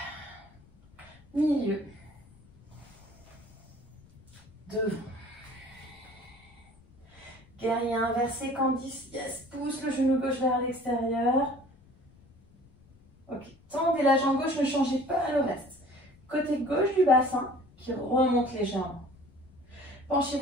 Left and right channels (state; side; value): noise; left; rumble, 28 dB below the sound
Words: Milieu. Devant. Guerrier inversé, Candice. Yes, pousse le genou gauche vers l'extérieur. Ok, tendez la jambe gauche, ne changez pas le reste. Côté gauche du bassin qui remonte légèrement.